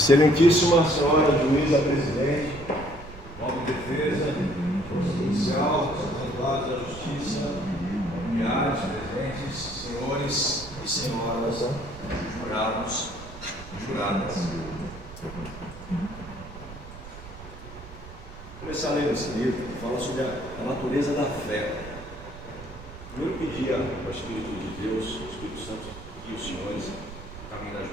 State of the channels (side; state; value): right; noise; rumble, 14 dB below the sound